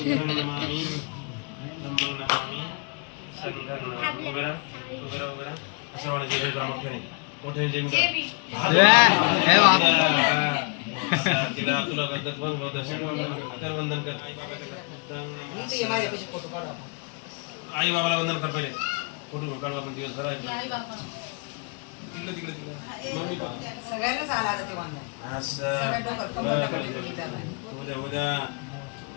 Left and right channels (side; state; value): right; quieter; 35.6 dB